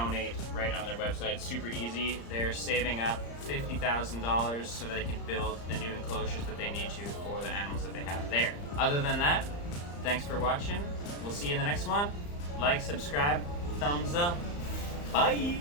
right on their website. Super easy. They're saving up $50,000 so that they can build the new enclosures that they need to for the animals that they have there. Other than that, thanks for watching. We'll see you in the next one. Like, subscribe, thumbs up. Bye!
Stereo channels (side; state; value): right; late; 35 ms